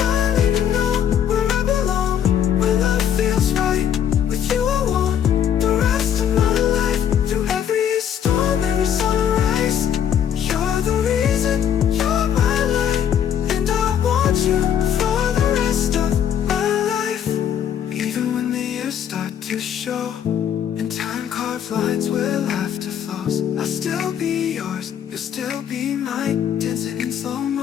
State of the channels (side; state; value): right; quieter; 9.2 dB